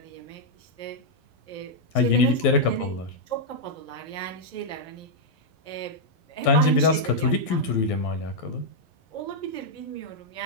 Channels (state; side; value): late; right; 12 ms